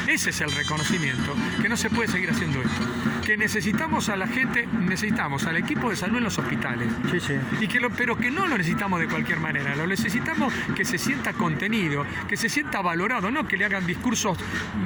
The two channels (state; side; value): identical; both; correlation 1.00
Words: ese es el reconocimiento, que no se puede seguir haciendo esto. Que necesitamos a la gente, necesitamos al equipo de salud en los hospitales. Sí, sí. Pero que no lo necesitamos de cualquier manera, lo necesitamos que se sienta contenido, que se sienta valorado, no que le hagan discursos